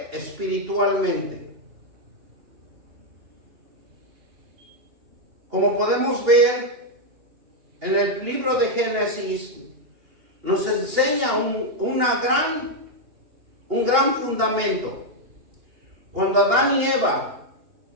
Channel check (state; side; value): late; left; 2.8 ms